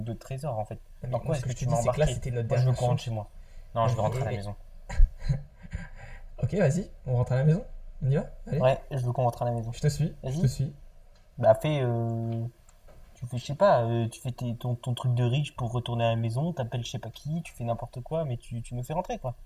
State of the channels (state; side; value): identical; both; correlation 1.00